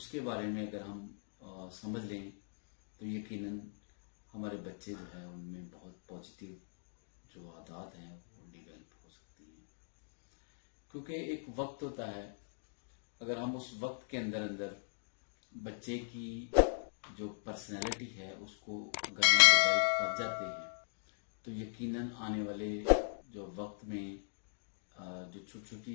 बारे में अगर हम समझ लें तो यकीनन हमारे बच्चे जो है उनमें बहुत पॉजिटिव जो आदत हैं वो डेवलप हो सकती हैं। क्योंकि एक वक्त होता है, अगर हम उस वक्त के अंदर अंदर बच्चे की जो पर्सनैलिटी है उसको अगर हम डेवलप कर जाते हैं तो यकीनन आने वाले जो वक्त में जो छोटी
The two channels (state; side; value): silent; right; digital silence